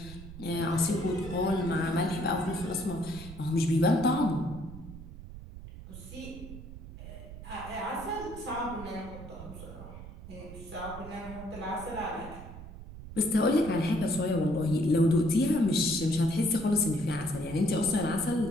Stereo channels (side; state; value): right; noise; rumble, 13 dB below the sound